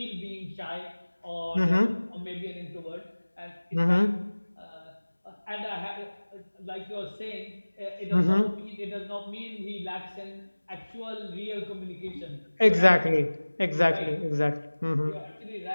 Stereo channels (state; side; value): inverted; both; correlation -1.00